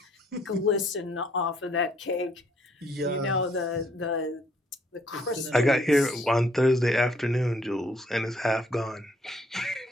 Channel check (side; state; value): both; normal; correlation 0.66